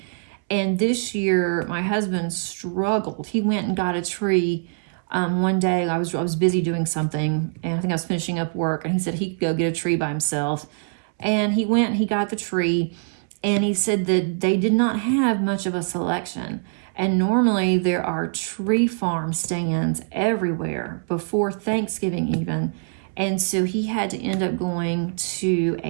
And this year, my husband struggled. He went and got a tree one day. I was busy doing something, and I think I was finishing up work, and he said he could go get a tree by himself. And he went and he got the tree, and he said that they did not have much of a selection. And normally there are tree farm stands everywhere before Thanksgiving even. And so he had to end up going to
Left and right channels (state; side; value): silent; left; 63 dB below the other